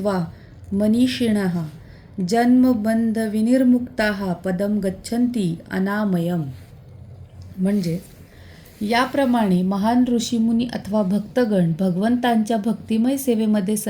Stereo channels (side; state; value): both; identical; correlation 1.00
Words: मनीषिणः जन्मबंध विनिर्मुक्ताः पदम गच्छन्ति अनामयम. म्हणजे याप्रमाणे महान ऋषीमुनी अथवा भक्तगण भगवंतांच्या भक्तिमय सेवेमध्ये